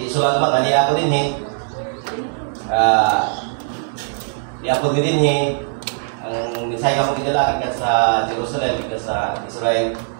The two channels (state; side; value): silent; left; 66 dB below the other